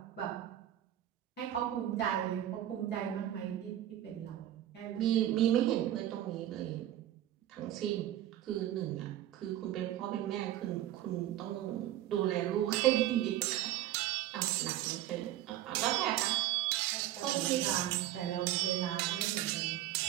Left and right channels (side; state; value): left; quieter; 12.9 dB